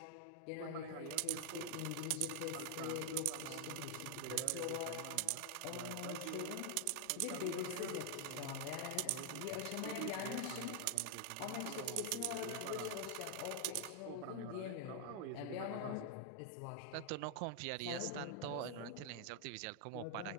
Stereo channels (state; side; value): different; both; correlation 0.00